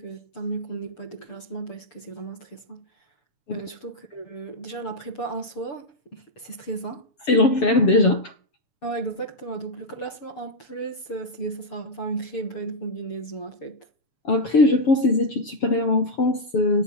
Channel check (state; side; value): late; right; 6.8 ms